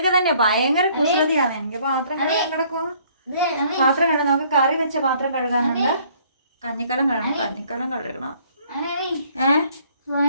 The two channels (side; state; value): both; inverted; correlation -0.61